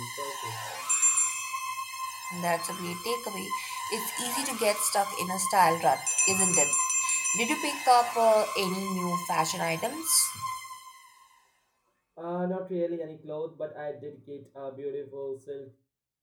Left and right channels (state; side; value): identical; both; correlation 1.00